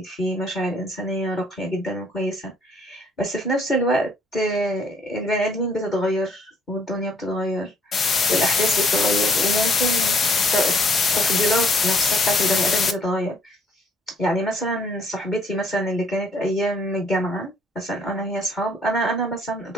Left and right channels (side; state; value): both; normal; correlation 0.64